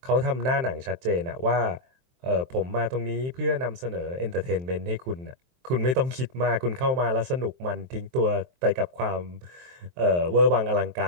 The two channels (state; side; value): late; left; 23 ms